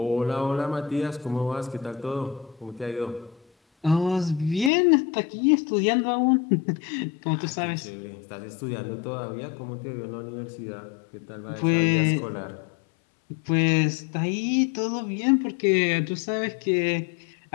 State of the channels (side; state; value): right; drops out; at 4.7 s